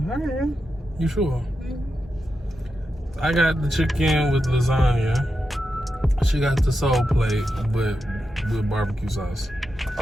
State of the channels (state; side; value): normal; both; correlation 0.88